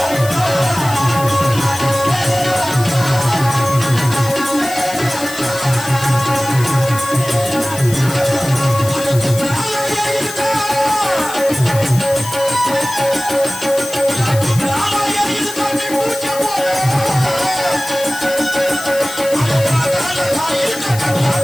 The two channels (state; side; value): noise; left; hiss, 11 dB below the sound